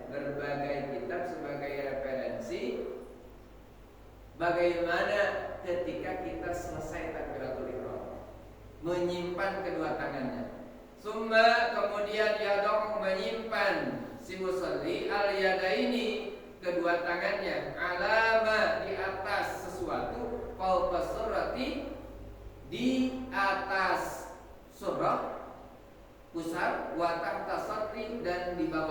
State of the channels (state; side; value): identical; both; correlation 1.00